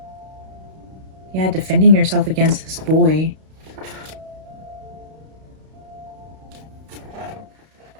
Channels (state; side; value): late; left; 32 ms